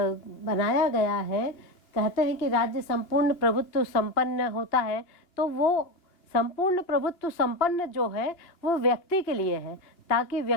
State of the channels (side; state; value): right; late; 2.8 ms